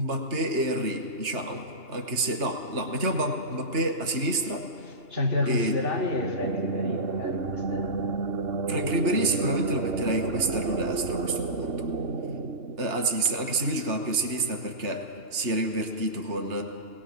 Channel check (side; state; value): left; late; 2.8 ms